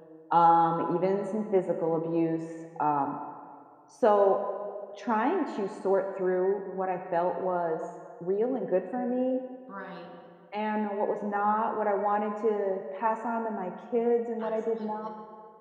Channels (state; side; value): identical; both; correlation 1.00